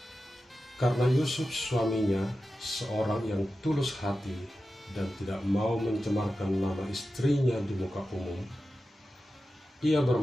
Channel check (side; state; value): both; normal; correlation 0.93